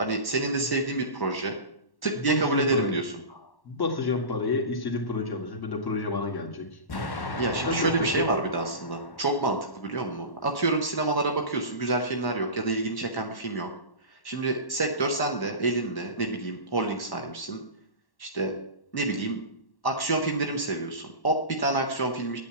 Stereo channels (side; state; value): right; late; 1.1 ms